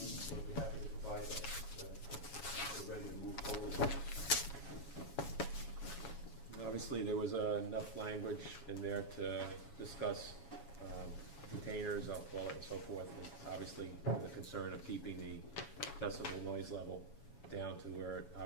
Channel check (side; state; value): right; late; 7.2 ms